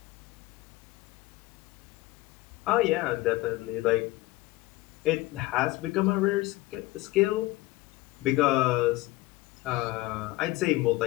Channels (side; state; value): right; quieter; 19.0 dB